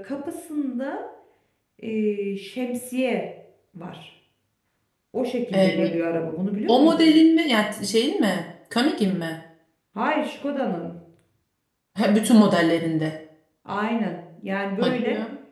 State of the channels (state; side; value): identical; both; correlation 1.00